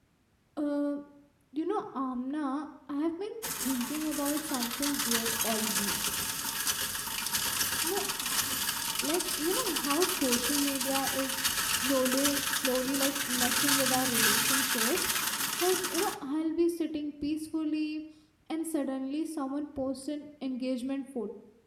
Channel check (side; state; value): both; identical; correlation 1.00